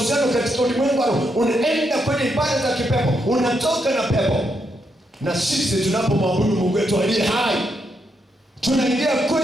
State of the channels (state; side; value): normal; both; correlation 0.80